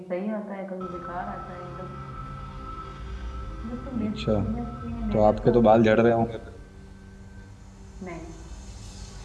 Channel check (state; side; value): identical; both; correlation 1.00